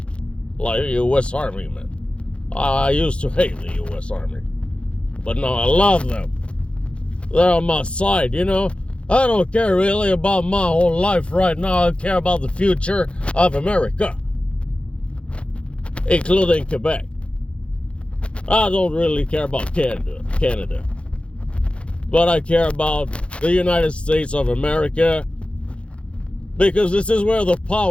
Like the U.S. Army, man. I used to hate the U.S. Army. But now I love them. They're on my side, I don't care really about my whole life right now. I care about the future of America. Including Quebec. I don't really care about Canada. But I care about the United States of America. Because this is where the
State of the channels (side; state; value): right; late; 0.059 ms